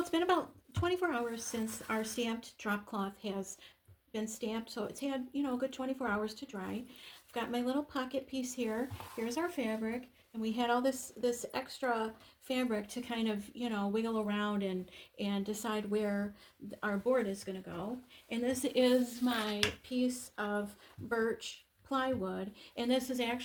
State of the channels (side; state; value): both; identical; correlation 1.00